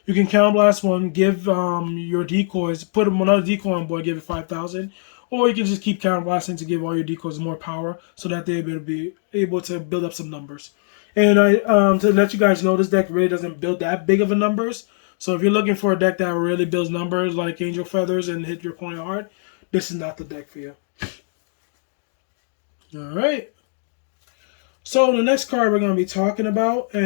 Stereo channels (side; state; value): right; silent; digital silence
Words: You can Counter Blast 1, give your decoys, put another decoy on board, give it 5,000. Or you can just keep Counter Blasting to give all your decoys more power so that they'll be able to build up some numbers. And to let you guys know, this deck really doesn't build that big of a numbers. So if you're looking for a deck that really builds numbers like Angel Feathers and hit your opponent hard, this is not the deck for you. Alright. So the next card we're going to be talking about,